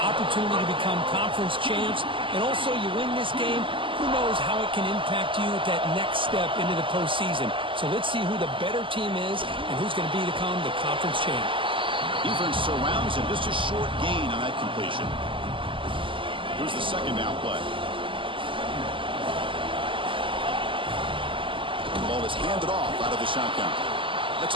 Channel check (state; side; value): late; left; 0.25 ms